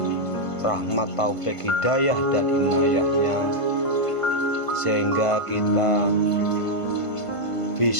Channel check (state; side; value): late; right; 1.5 ms